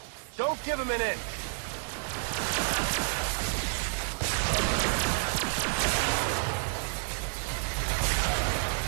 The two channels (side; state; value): left; silent; 58 dB below the other